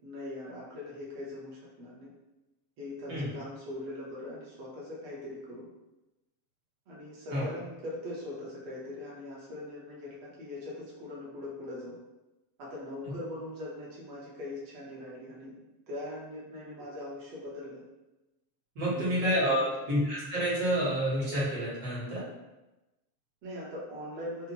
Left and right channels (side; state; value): left; late; 7.8 ms